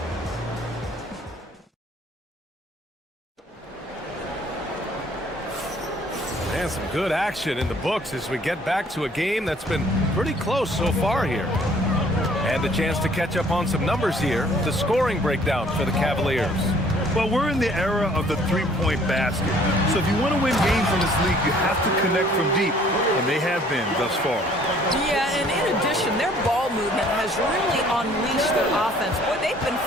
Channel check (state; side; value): normal; both; correlation 0.58